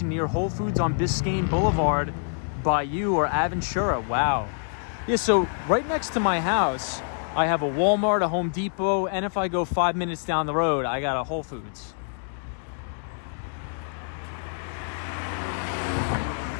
near Whole Foods on Biscayne Boulevard by you or Aventura. Wow. Yeah, so right next to my house, I have a Walmart, a Home Depot, and if I go 5 minutes down the road, I got a Whole Foods.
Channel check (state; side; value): silent; right; digital silence